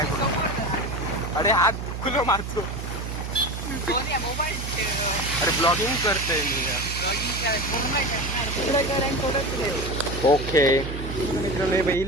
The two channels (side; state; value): right; noise; hum, 6 dB below the sound